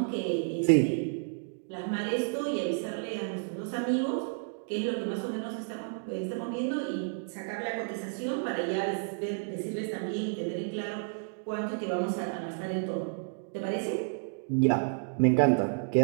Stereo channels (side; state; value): left; silent; digital silence